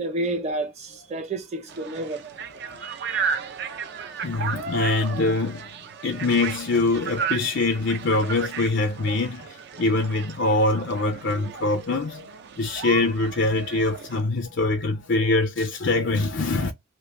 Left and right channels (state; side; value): normal; both; correlation 0.21